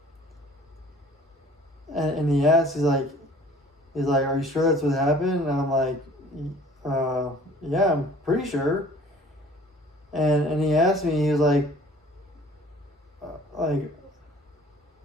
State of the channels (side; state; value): both; normal; correlation 0.51